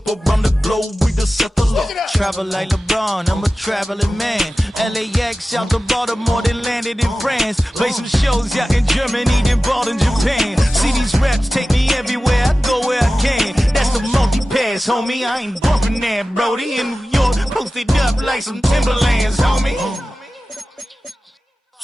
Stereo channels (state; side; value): normal; both; correlation 0.95